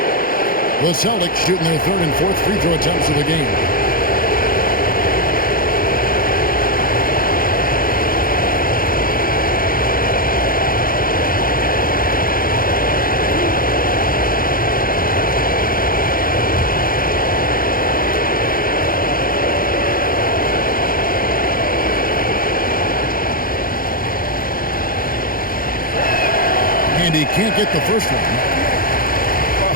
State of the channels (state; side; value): late; right; 0.42 ms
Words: The Celtics shooting their third and fourth free throw attempts of the game. And he can't get the first one.